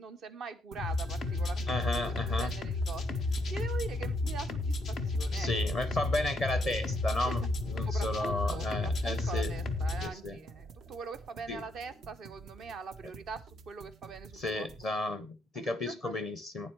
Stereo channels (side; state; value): both; normal; correlation 0.75